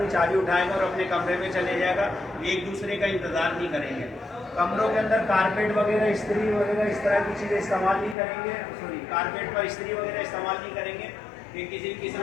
چابی اٹھائے گا اور اپنے کمرے میں چلے جائے گا، ایک دوسرے کا انتظار نہیں کریں گے۔ کمروں کے اندر کارپیٹ وغیرہ استری وغیرہ اس طرح کی چیزیں استعمال نہیں کریں گے، کارپیٹ پر استری وغیرہ استعمال نہیں کریں گے کہ کسی بھی قسم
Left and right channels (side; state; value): right; drops out; at 8.2 s